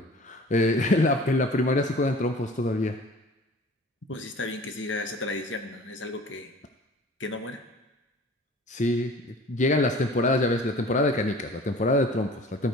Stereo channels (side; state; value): both; normal; correlation 0.45